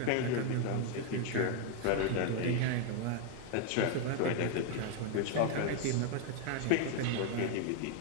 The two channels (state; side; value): different; both; correlation 0.01